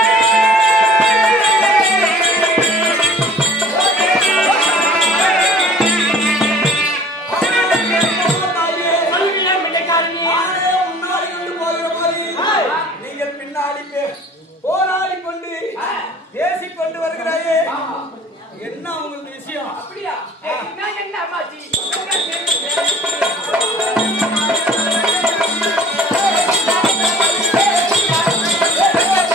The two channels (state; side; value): normal; both; correlation 0.49